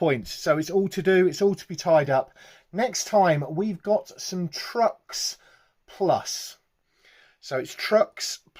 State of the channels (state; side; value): identical; both; correlation 1.00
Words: So it's all to do, it's all to be tied up. Next time we've got some trucks plus. So it's trucks